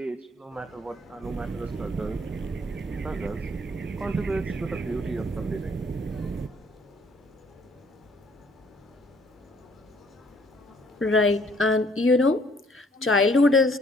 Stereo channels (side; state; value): both; normal; correlation 0.63